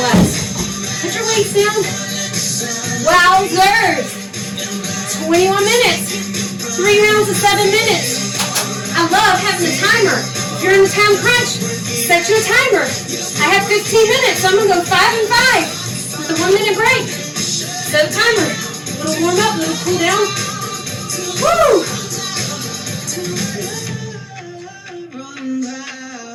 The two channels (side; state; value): both; identical; correlation 1.00